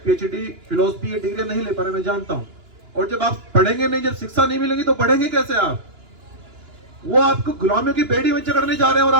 PhD, फिलोसफी ये डिग्री नहीं ले पा रहे, मैं जानता हूं। और जब आप पढ़ेंगे नहीं, जब शिक्षा नहीं मिलेगी तो पढ़ेंगे कैसे आप? वो आपको गुलामियों की बेड़ी में जकड़ने जा रहे हैं और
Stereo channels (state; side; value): late; left; 2.9 ms